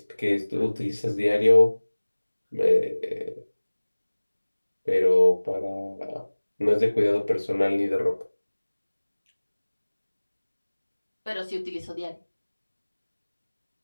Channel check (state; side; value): inverted; both; correlation -1.00